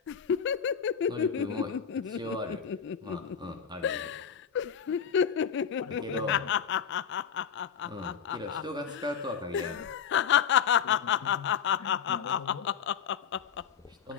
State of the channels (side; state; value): right; quieter; 7.6 dB